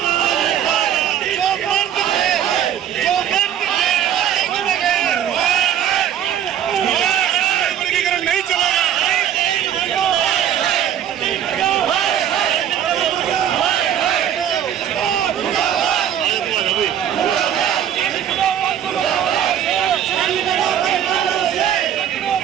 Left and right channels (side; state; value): left; quieter; 9.9 dB